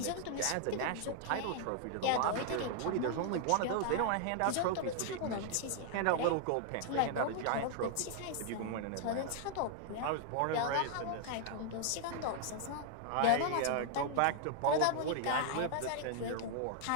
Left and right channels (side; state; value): both; different; correlation -0.01